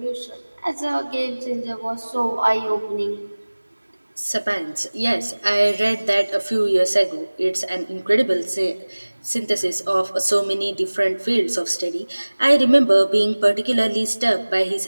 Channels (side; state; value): both; inverted; correlation -1.00